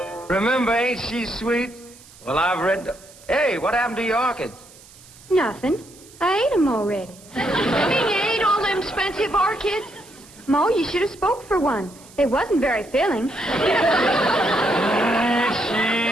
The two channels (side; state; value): right; noise; hiss, 23 dB below the sound